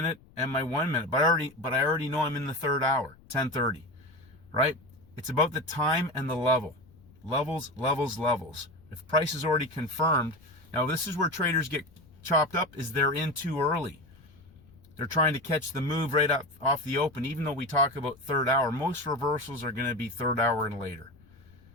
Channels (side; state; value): left; noise; rumble, 26 dB below the sound